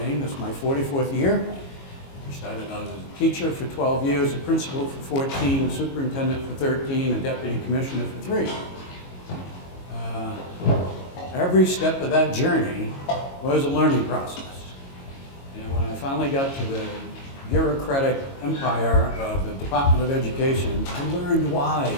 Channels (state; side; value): late; right; 22 ms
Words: This is my 44th year. I started out as a teacher for 12 years, a principal for 14, a superintendent for 13, a deputy commissioner for 3. Every step of that journey was a learning process. And when I finally got to the bureaucratic empire of the Department of Education, I learned why